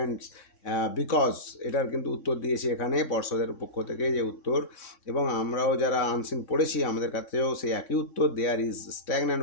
because, এটার কিন্তু উত্তর দিয়েছে এখানে পর্ষদের পক্ষ থেকে যে উত্তর, এবং আমরাও যারা আনসিন পড়েছি আমাদের কাছেও সেই একই উত্তর, there is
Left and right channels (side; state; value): right; late; 3.6 ms